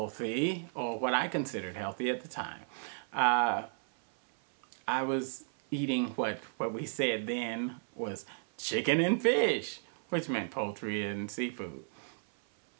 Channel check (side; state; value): left; silent; 55 dB below the other